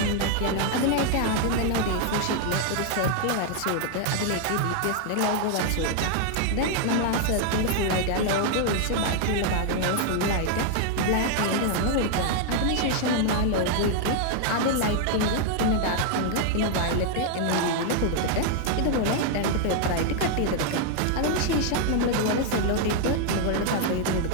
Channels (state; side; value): different; both; correlation 0.00